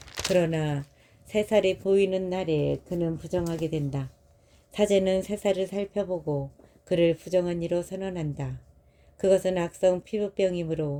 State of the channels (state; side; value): identical; both; correlation 1.00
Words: 그러나 새살이 보이는 날에 그는 부정하게 된다. 사제는 새살을 살펴보고 그를 부정한 이로 선언한다. 그것은 악성